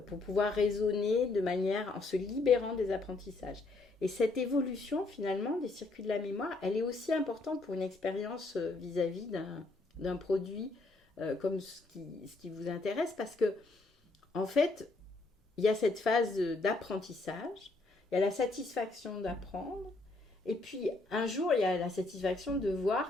pour pouvoir raisonner de manière en se libérant des apprentissages. Et cette évolution, finalement, des circuits de la mémoire, elle est aussi importante pour une expérience vis-à-vis d'un produit comme ce qui vous intéresse, parce que, en fait, il y a cette phase d'apprentissage, il y a la satisfaction d'apprendre, et puis un jour, il y a la satisfaction de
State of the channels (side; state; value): right; quieter; 3.2 dB